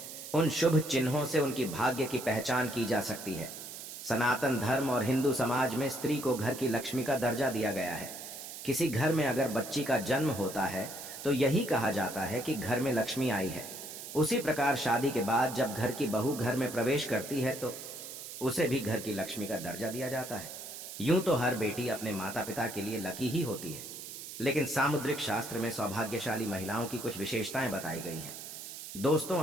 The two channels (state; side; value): noise; right; hiss, 10 dB below the sound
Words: उन शुभ चिन्हों से उनकी भाग्य की पहचान की जा सकती है। सनातन धर्म और हिंदू समाज में स्त्री को घर की लक्ष्मी का दर्जा दिया गया है। किसी घर में अगर बच्ची का जन्म होता है तो यही कहा जाता है कि घर में लक्ष्मी आई है। उसी प्रकार शादी के बाद जब घर की बहू घर में प्रवेश करती है तो उसे भी घर की लक्ष्मी का दर्जा दिया जाता है। यूं तो हर बेटी अपने माता पिता के लिए लकी ही होती है, लेकिन सामुद्रिक शास्त्र में सौभाग्यशाली महिलाओं की कुछ विशेषताएं बताई गई हैं। दोस्तों,